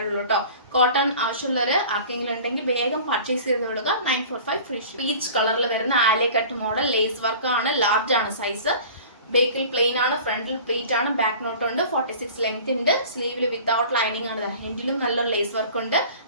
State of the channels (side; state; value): both; inverted; correlation -0.42